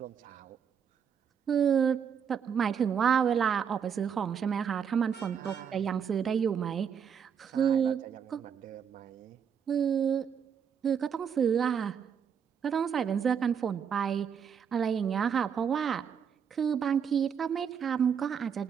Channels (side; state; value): left; quieter; 7.4 dB